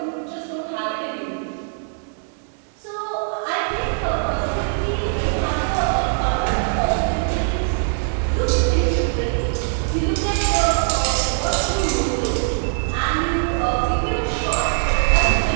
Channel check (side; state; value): left; silent; 59 dB below the other